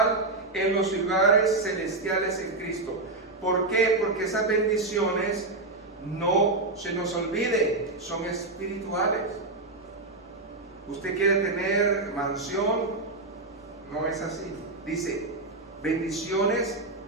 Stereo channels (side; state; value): left; quieter; 3.2 dB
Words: en los lugares celestiales en Cristo. ¿Por qué? Porque esas bendiciones, no se nos olvide, son espirituales. Usted quiere tener mansión, no es así. Dice, bendiciones